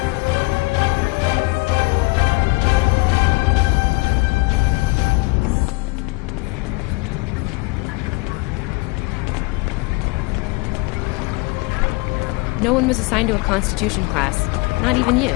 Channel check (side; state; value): right; quieter; 25.5 dB